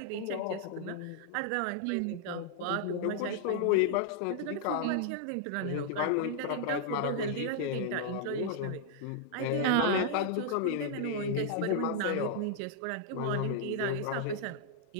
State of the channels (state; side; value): different; both; correlation -0.01